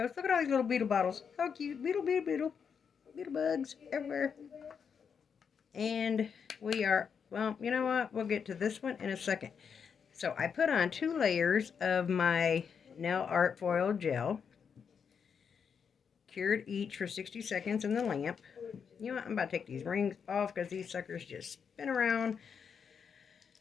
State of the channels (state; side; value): quieter; right; 6.7 dB